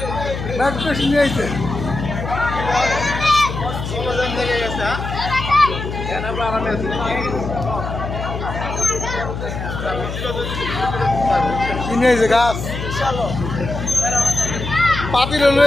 ম্যাট্রেস নিয়ে আইছে কিনে আইছে গাছ পাতিল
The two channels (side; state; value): left; noise; hum, 6 dB below the sound